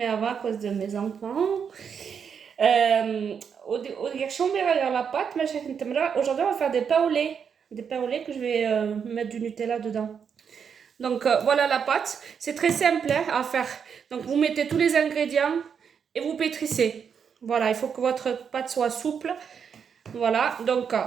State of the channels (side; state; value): left; quieter; 7.0 dB